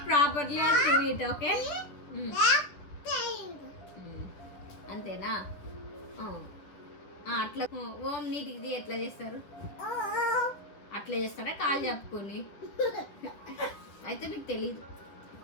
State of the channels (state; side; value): late; right; 10 ms